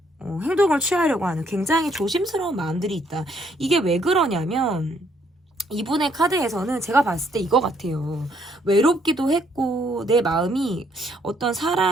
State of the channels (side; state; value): both; normal; correlation 0.69